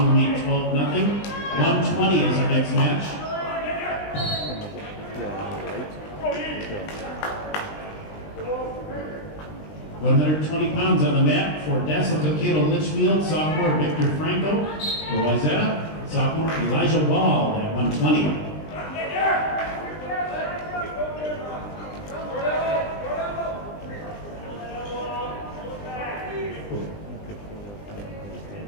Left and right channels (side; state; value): right; late; 20 ms